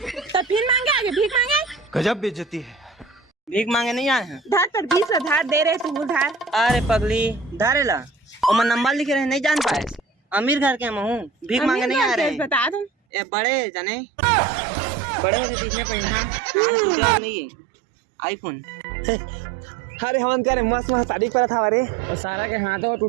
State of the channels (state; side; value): drops out; left; at 12.9 s